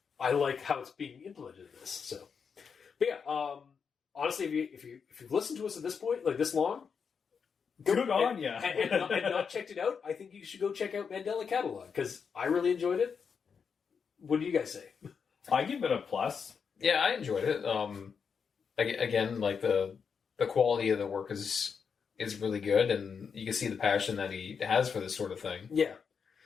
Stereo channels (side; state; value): right; quieter; 6.2 dB